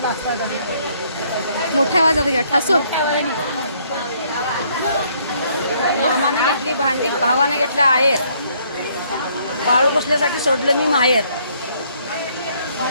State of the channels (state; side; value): inverted; both; correlation -0.66